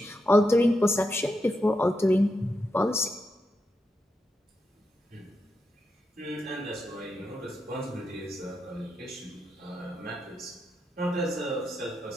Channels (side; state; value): both; normal; correlation 0.85